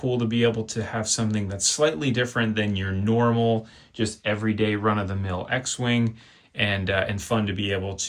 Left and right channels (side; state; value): both; identical; correlation 1.00